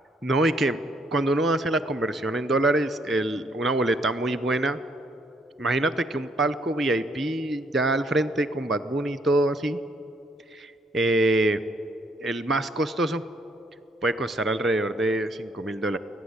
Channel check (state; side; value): normal; both; correlation 0.69